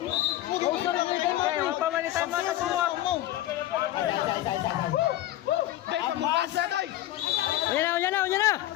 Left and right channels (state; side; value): quieter; right; 14.4 dB